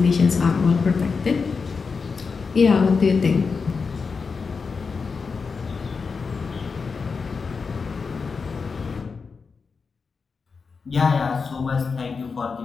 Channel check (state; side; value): quieter; right; 5.0 dB